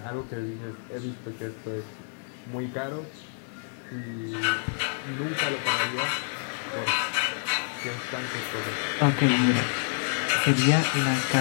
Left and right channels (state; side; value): silent; right; digital silence